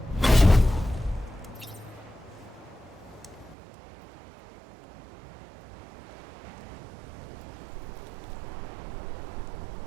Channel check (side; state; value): left; drops out; at 3.6 s